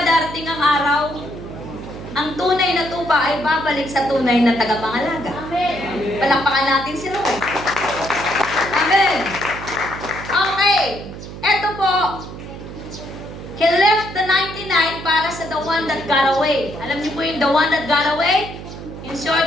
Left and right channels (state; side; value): noise; right; hum, 12 dB below the sound